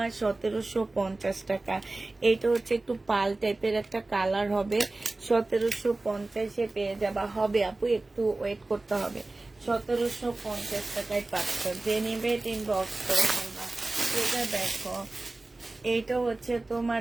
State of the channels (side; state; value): left; quieter; 3.1 dB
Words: 1750 টাকা। এটা হচ্ছে একটু পাল টাইপের একটা কালার হবে, 1750-এ পেয়ে যাবা। হবে আপু, একটু ওয়েট করতে হবে। 1750 টাকায় পাচ্ছ, যে নিবে এটা ইনবক্স করে ফেলবা। এটা দেখো, এইটা হচ্ছে তোমার